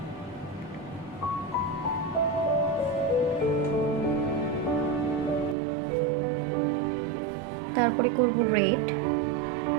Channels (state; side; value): drops out; left; at 5.6 s